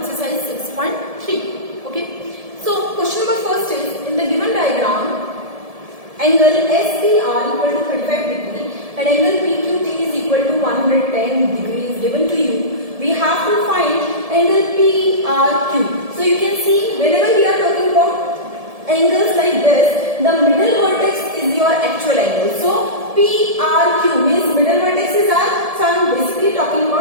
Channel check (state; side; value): late; left; 1.7 ms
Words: 6.3. Okay. So question number first is, in the given diagram, angle SPR equal to 35 degree and angle PQT is equal to 110 degrees given to you. We have to find angle PRQ. So you can see whenever we are talking about angles like this, the middle vertex is your actual angle. So PRQ means middle vertices are, so I am basically talking